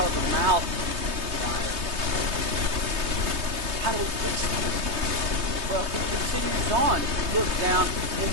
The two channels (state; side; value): late; left; 3.2 ms